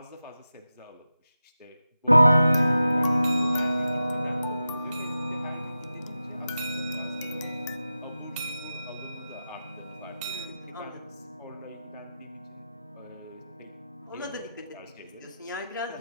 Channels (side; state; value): both; inverted; correlation -0.92